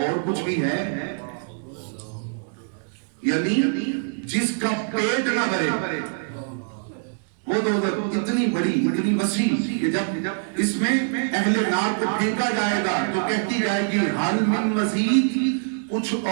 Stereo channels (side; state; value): left; silent; digital silence